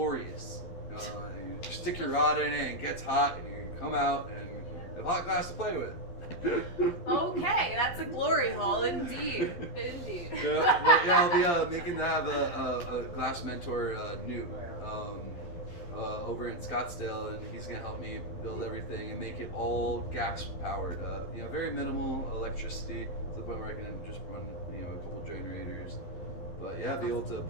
You stick your rod in it, and it gets hot, and you come out and have hot glass to play with. Okay, that's a glory hole indeed. Indeed. I'll be making that a glass mentor new over in Scottsdale, and he's gonna help me build everything and make it all gas powered. Very minimal electricity to the point where I can just run a couple generators. But yeah, be able to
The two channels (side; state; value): right; late; 12 ms